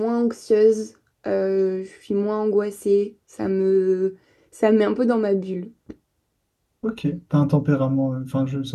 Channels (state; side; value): identical; both; correlation 1.00